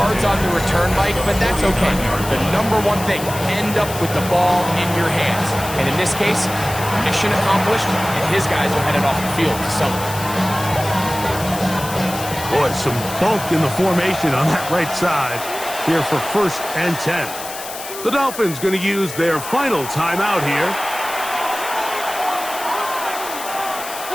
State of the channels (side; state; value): left; noise; hiss, 10 dB below the sound